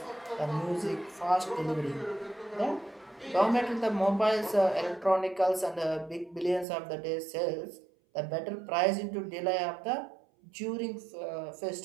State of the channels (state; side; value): drops out; left; at 6.7 s